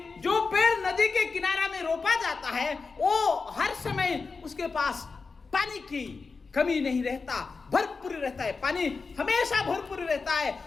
जो पेड़ नदी के किनारा में रोपा जाता है वो हर समय उसके पास पानी की कमी नहीं रहता, भरपूर रहता है। पानी हमेशा भरपूर रहता है।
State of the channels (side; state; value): right; quieter; 4.5 dB